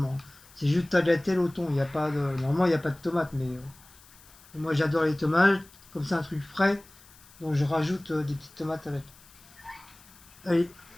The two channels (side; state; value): left; noise; hiss, 24 dB below the sound